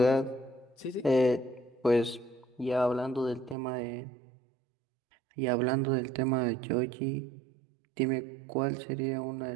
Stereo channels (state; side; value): drops out; left; at 3.6 s